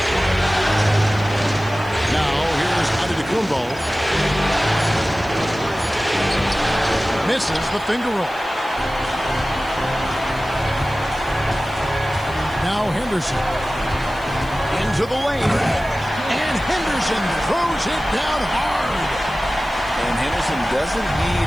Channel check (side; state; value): right; noise; hiss, 25 dB below the sound